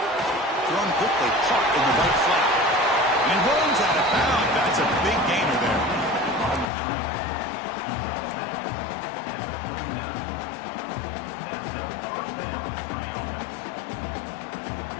Thrown quickly, caught in the right flat. And he runs out of bounds. That's a big gainer there.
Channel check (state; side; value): drops out; right; at 6.7 s